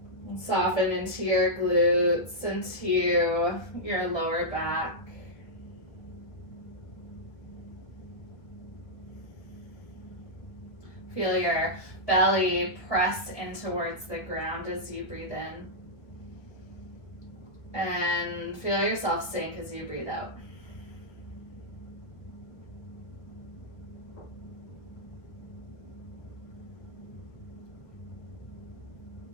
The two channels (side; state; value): right; late; 1.6 ms